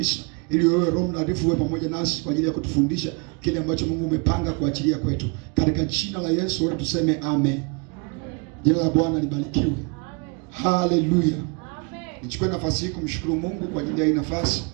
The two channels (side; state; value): left; quieter; 32.7 dB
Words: ili wewe Roho Mtakatifu uwe pamoja nasi kwa ajili ya kutufundisha kile ambacho Mungu umepanga kuachilia kwetu. Katika jina la Yesu wewe tuseme amen. Jina la Bwana libarikiwe. Haleluya. Nichukue nafasi hii kumshukuru Mungu kwa ajili ya hii nafasi.